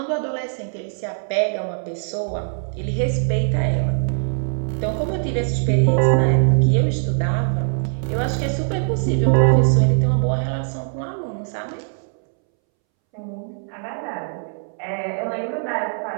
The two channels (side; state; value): left; silent; 65 dB below the other